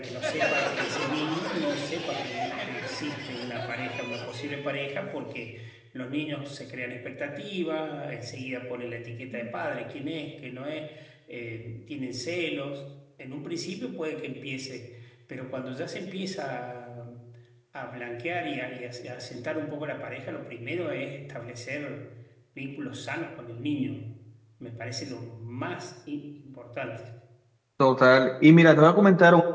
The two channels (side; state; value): both; identical; correlation 1.00